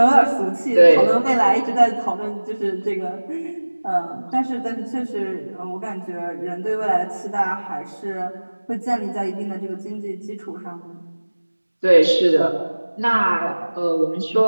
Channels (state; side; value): inverted; both; correlation -1.00